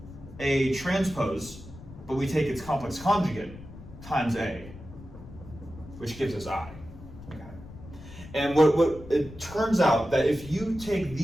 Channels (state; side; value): noise; left; rumble, 16 dB below the sound